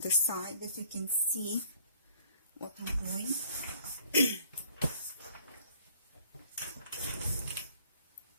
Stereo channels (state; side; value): inverted; both; correlation -0.56